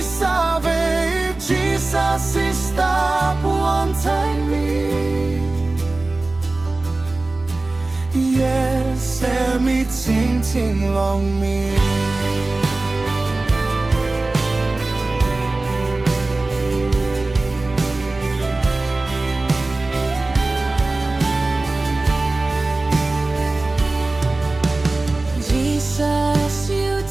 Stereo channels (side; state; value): left; quieter; 3.1 dB